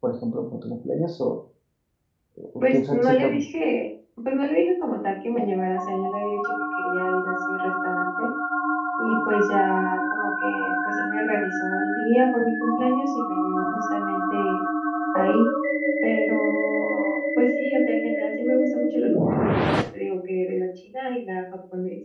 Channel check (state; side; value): identical; both; correlation 1.00